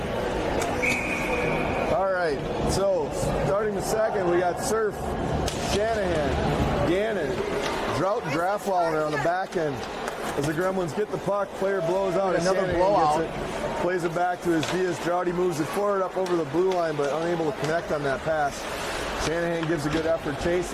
All right, so starting the second, we got Surf, Shanahan, Gannon, Drought, and Draftwalder on the back end. As the Gremlins get the puck, player blows out as Shanahan gets it, plays it back to his Diaz. Droughty moves it forward up over the blue line, but unable to connect on that pass. Shanahan gives a good effort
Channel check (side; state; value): both; identical; correlation 1.00